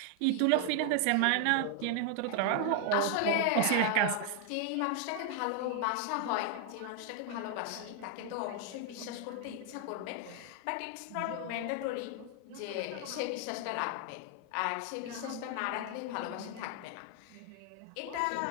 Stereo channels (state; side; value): different; both; correlation 0.00